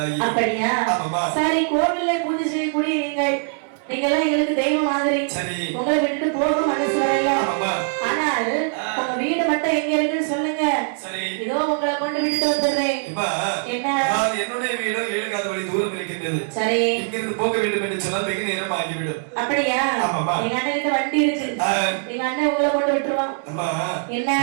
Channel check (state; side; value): silent; left; 61 dB below the other